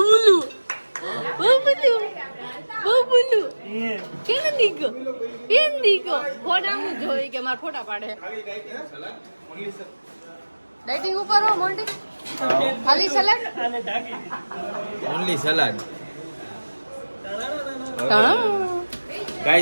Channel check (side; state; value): both; inverted; correlation -1.00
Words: કેમ દીકો ફોટામાં જોઈ કે મારા ફોટા પાડે. ડાઇટિંગ ઉપર હો મોન્ટી, ખાલી સલાડ ઓનલી સલાડ.